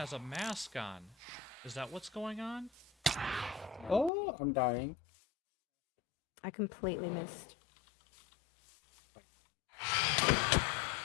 a mask on. Is that what's going on? Oh, I'm dying. I completely missed.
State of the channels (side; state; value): right; drops out; at 4.1 s